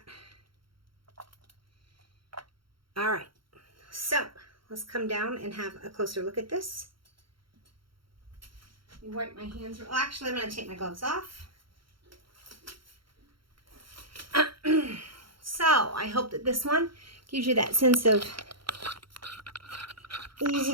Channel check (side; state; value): left; late; 0.73 ms